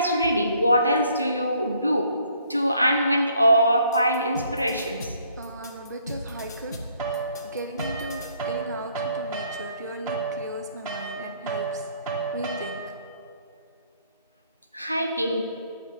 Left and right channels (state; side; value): inverted; both; correlation -0.65